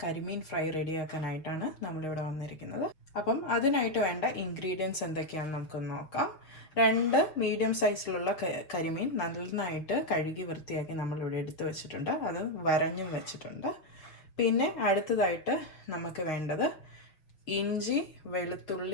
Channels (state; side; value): late; right; 6.4 ms